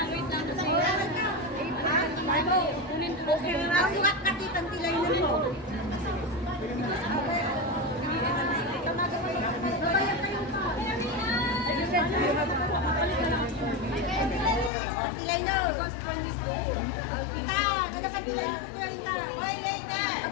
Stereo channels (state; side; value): drops out; right; at 14.7 s